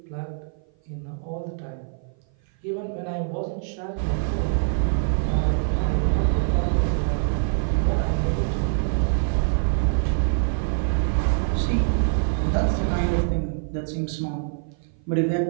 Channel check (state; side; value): silent; left; 56 dB below the other